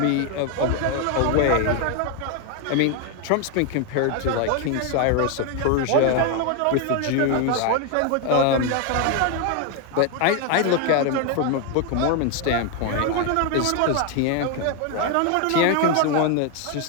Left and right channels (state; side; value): different; both; correlation 0.01